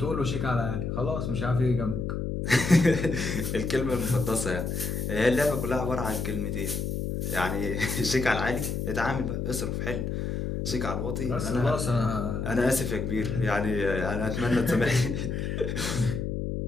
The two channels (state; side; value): noise; left; hum, 2 dB below the sound